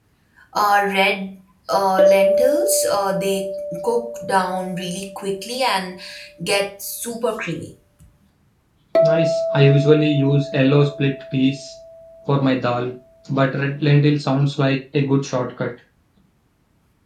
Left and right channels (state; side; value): identical; both; correlation 1.00